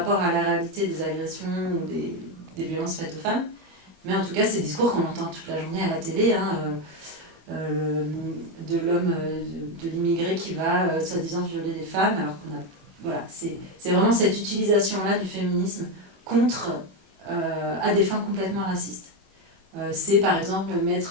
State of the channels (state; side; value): late; left; 21 ms